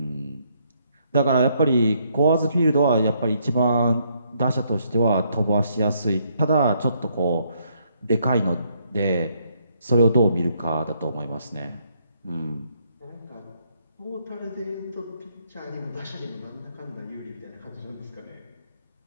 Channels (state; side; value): inverted; both; correlation -0.72